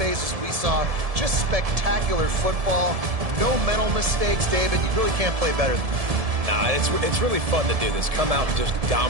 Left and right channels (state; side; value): late; left; 1.7 ms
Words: we saw, just spectacular football. No mental mistakes, David. You really can't play better than that. Nah, it's really fun to do this. Come out and just